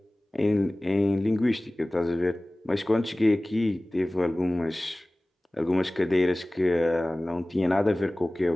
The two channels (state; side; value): normal; both; correlation 0.98